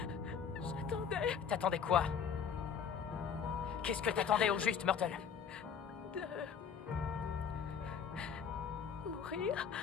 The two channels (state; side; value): quieter; right; 7.1 dB